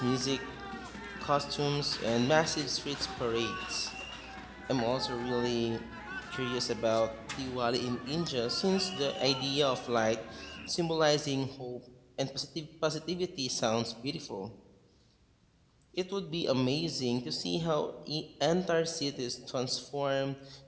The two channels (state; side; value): identical; both; correlation 1.00